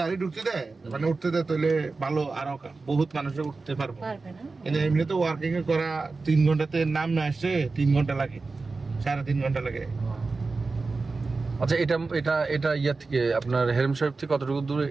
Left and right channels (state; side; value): quieter; left; 3.9 dB